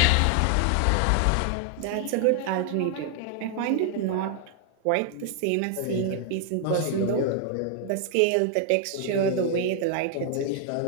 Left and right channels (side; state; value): both; different; correlation 0.00